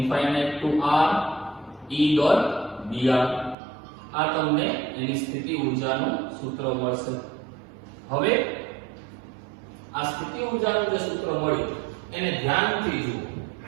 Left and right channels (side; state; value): left; drops out; at 3.6 s